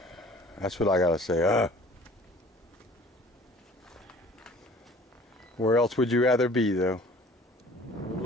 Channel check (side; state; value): both; normal; correlation 0.49